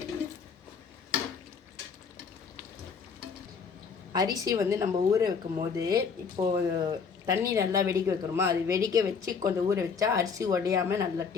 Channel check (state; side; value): quieter; right; 5.8 dB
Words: அரிசி நம்ம ஊற வைக்கும் போது இப்போது தண்ணி நல்லா வெடிக்க வைக்கிறோமா, அது வெடிக்க வச்சு கொஞ்சம் ஊற வச்சா அரிசி உடையாமல் நல்லா